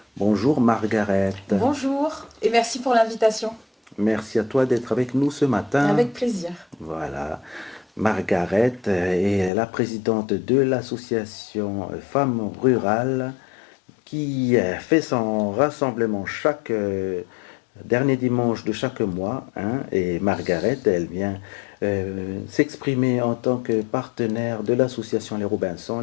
Bonjour Margaret. Bonjour et merci pour l'invitation. Merci à toi d'être avec nous ce matin. Avec plaisir. Voilà. Margaret est la présidente de l'association Femmes Rurales qui fait son rassemblement chaque dernier dimanche de chaque mois. Hein, et Margaret, elle vient s'exprimer en tant que partenaire de l'association Les Robinsons.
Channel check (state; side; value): drops out; right; at 9.5 s